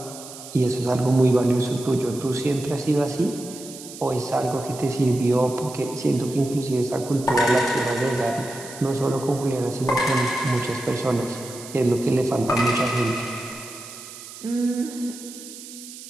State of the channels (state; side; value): noise; right; hiss, 14 dB below the sound